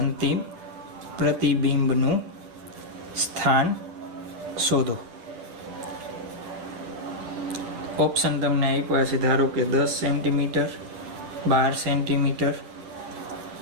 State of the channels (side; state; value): left; late; 10 ms